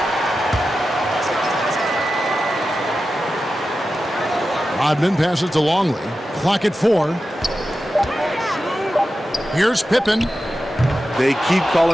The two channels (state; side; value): normal; both; correlation 0.92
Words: Rodman passes to Longley. Clock at 4. Here's Pippen. They keep